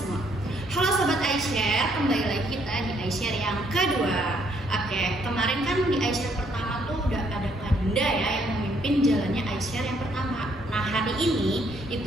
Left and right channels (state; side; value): normal; both; correlation 0.69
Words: Halo Sobat iShare, kembali lagi kita di iShare yang kedua. Oke, kemarin kan di iShare pertama tuh udah ada Kak Dinda ya yang memimpin jalannya iShare yang pertama. Nah hari ini